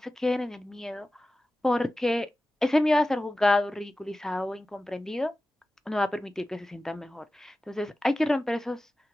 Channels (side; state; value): both; normal; correlation 0.95